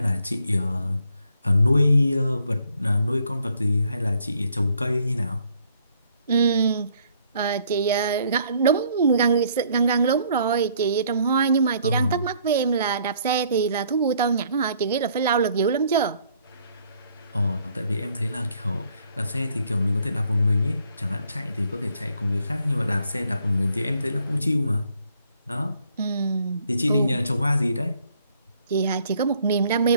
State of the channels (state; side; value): inverted; both; correlation -0.65